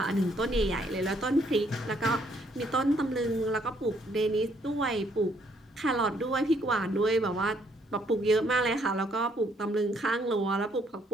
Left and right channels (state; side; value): normal; both; correlation 0.68